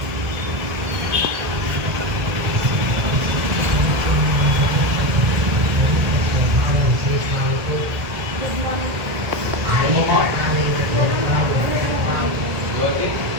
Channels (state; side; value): late; left; 1.6 ms